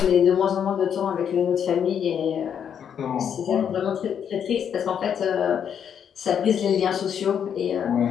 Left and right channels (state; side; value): quieter; right; 8.3 dB